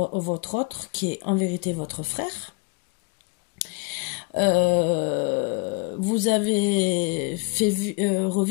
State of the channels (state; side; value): quieter; right; 31.8 dB